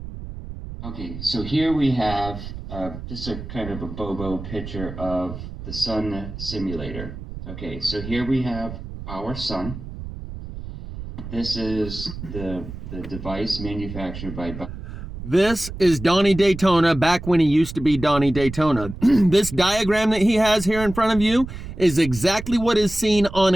Okay, so here we have just a kind of a bobo picture of the sun simulator. Okay, so here we have our sun. This is the device manufactured by... This is Donnie Daytona back when he used to be Donnie Daytona. This diagram that he has here in front of you is exactly what is seen on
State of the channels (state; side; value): noise; right; rumble, 10 dB below the sound